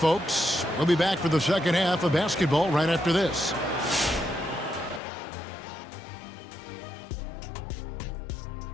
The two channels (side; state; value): right; drops out; at 5.0 s